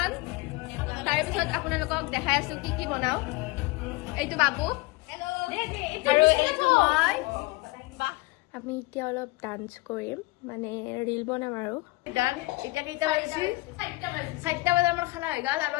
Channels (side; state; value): right; quieter; 23.1 dB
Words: তাৰপিছত আপোনালোকক দেখাই আছো কি কি বনাও এইটো বাবু আৰু এইটো মই আমি এতিয়া অলপ ডান্স কৰিম মানে ৰিল বনাম আৰু গান এতিয়া কেইটা বাজিছে 4টা বজাত আমাৰ খানা হৈ গ'ল আৰু